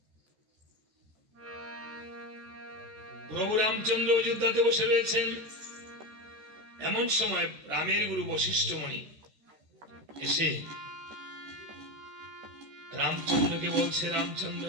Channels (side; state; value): left; late; 13 ms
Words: প্রভু রামচন্দ্র অযোধ্যাতে বসে রয়েছেন, এমন সময় রামের গুরু বশিষ্ঠ মুনি এসে রামচন্দ্রকে বলছে, রামচন্দ্র